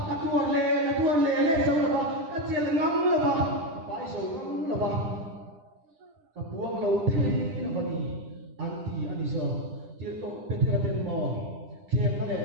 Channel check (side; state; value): left; late; 10 ms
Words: ka tuar le le so la ba ka chel ngam la ba bai so ngam la ba ka buang lo the la ba ni anti ani so tir to petera ten mo khem ka le